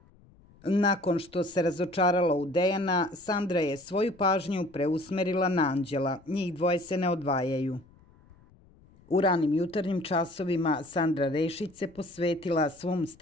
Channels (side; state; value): left; noise; rumble, 27 dB below the sound